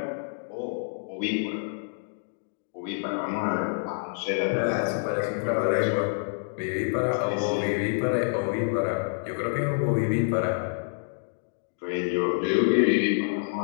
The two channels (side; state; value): right; silent; digital silence